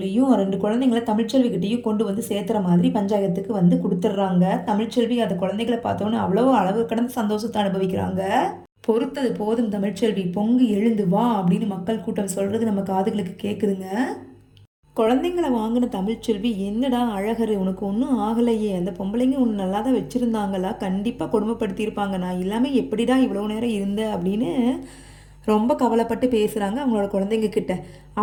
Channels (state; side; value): identical; both; correlation 1.00